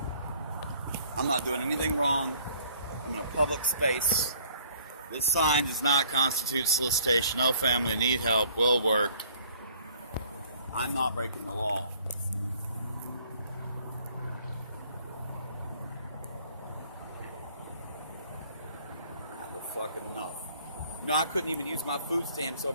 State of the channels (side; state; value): both; inverted; correlation -0.58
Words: I'm not doing anything wrong. I'm in a public space. This sign does not constitute solicitation. No family, need help, will work. I'm not breaking the law. I have fucking enough. No, I couldn't even use my food stamps